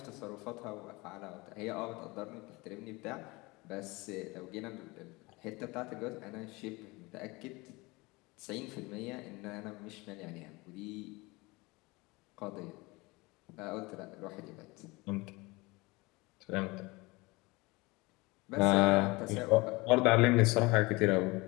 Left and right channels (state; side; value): quieter; right; 23.8 dB